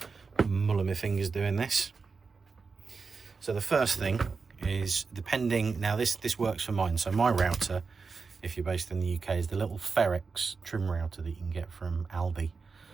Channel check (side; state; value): left; quieter; 4.8 dB